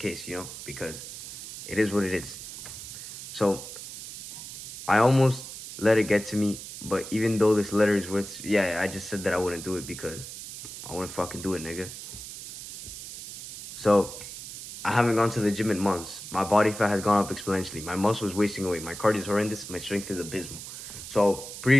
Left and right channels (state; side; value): noise; right; hiss, 11 dB below the sound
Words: because it is what it is. So I almost let it get to me, but even though this letter is worth, I just said that I wouldn't do it because I wouldn't fucking do it, nigga. So I haven't gone to the gym in months. My body fat has gone up exponentially. My muscle is wasting away. My cardio is horrendous. My strength is abysmal. So